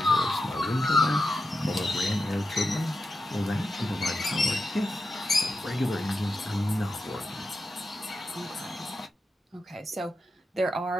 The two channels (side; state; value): both; normal; correlation 0.89